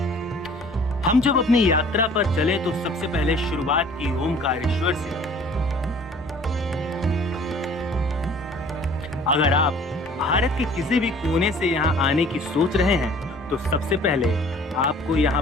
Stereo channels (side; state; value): both; normal; correlation 0.52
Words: हम जब अपनी यात्रा पर चले तो सबसे पहले शुरुआत की ओमकारेश्वर से। अगर आप भारत के किसी भी कोने से यहाँ आने की सोच रहे हैं तो सबसे पहले आपको